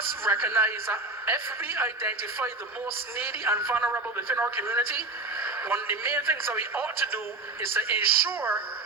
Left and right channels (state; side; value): quieter; left; 3.2 dB